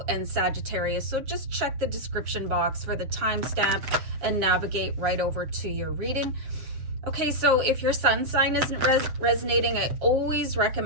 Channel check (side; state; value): left; late; 7.6 ms